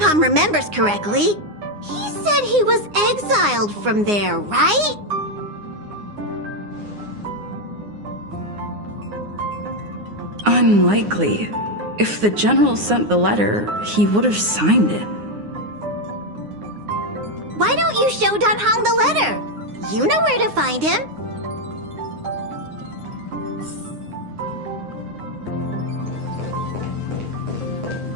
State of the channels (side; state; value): left; late; 9.7 ms